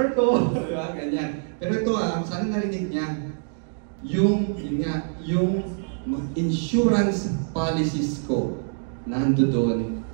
ko, di ba? Ganyan. Pero ito sana narinig niya, yung insurance policies ko nando doon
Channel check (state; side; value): silent; left; digital silence